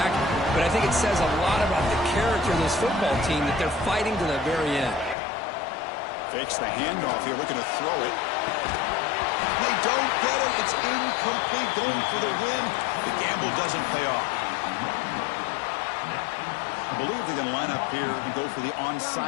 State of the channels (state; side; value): drops out; right; at 5.2 s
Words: but I think it says a lot about the character of this football team that they're fighting to the very end. Fakes the handoff here, looking to throw it. They don't get it. It's incomplete, going for the win. The gamble doesn't pay off. I believe they're going to line up here and go for the